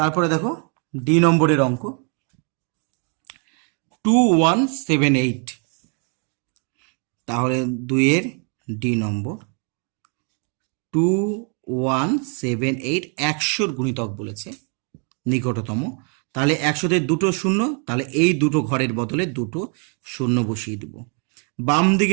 দেখো ডি নম্বরের অঙ্ক 2178, তাহলে 2-এর ডি নম্বর 2178 100-র গুণিতক বলেছে নিকটতম, তাহলে 100-তে দুটো শূন্য, তাহলে এই দুটো ঘরের বদলে দুটো শূন্য বসিয়ে দেব। বাম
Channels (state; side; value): quieter; left; 39.7 dB